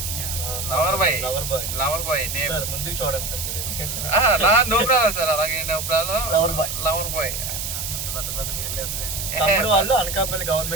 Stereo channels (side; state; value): right; noise; hiss, 4 dB below the sound